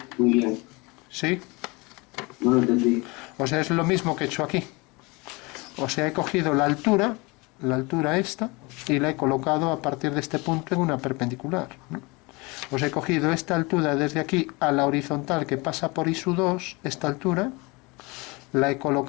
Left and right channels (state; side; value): quieter; right; 26.1 dB